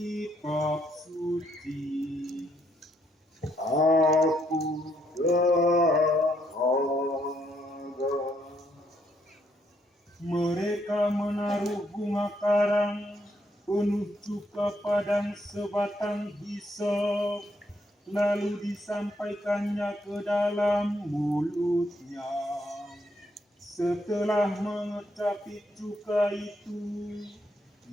suci, Aku dahaga. mereka menaruh bunga karang penuh cuka padang sebatang hisop, lalu disampaikannya ke dalam mulutnya. Setelah mengecapi cuka itu,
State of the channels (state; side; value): normal; both; correlation 0.74